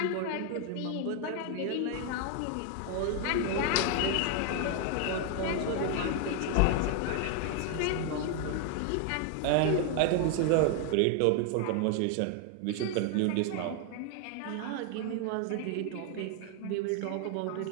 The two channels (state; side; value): different; both; correlation 0.00